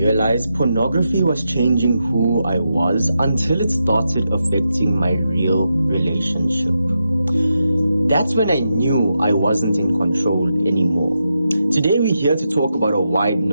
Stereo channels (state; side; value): inverted; both; correlation -0.86